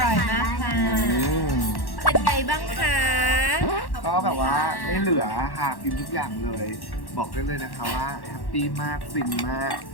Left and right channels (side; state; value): right; late; 1.1 ms